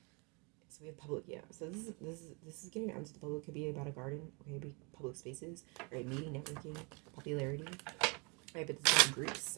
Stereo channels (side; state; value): left; quieter; 31.3 dB